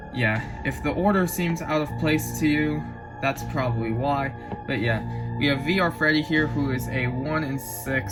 yeah, if the order seems out of place to you, that's probably why. But yeah, we have VR Freddy here, who is a 1 in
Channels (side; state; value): both; identical; correlation 1.00